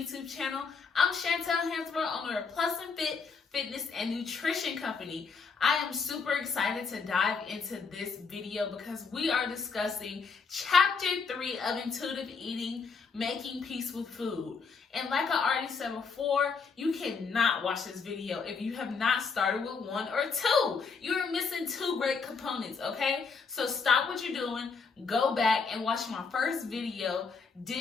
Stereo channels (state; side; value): quieter; right; 5.2 dB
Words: channel. I'm Chantel Hansborough, owner of Plus and Fit Fitness and Nutrition Company. I am super excited to dive into this video because we are discussing Chapter 3 of Intuitive Eating, Making Peace with Food. And like I already said before, you cannot watch this video if you have not started with 1 or 2. You're missing 2 great components, okay? So stop what you're doing, go back and watch my first video,